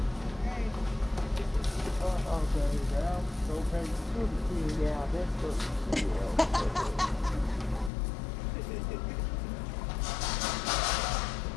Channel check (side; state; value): right; drops out; at 7.9 s